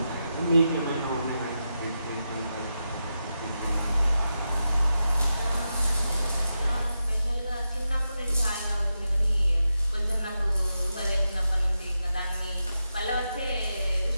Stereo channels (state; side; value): inverted; both; correlation -0.88